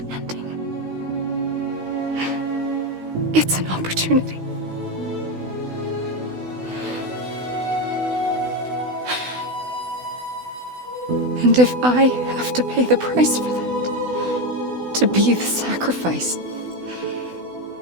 ending. It's an opportunity. And if I have to pay the price for that, to be the sacrifice,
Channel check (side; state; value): left; late; 16 ms